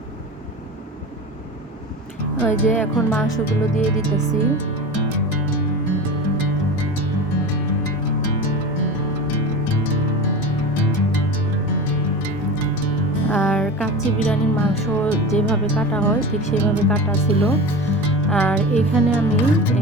ওই যে এখন মাংসগুলো দিয়ে দিতেছি। আর কাচ্চি বিরিয়ানির মাংস যেভাবে কাটা হয় ঠিক সেভাবে কাটা ছিল। আর এখানে আমি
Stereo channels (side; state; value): both; normal; correlation 0.30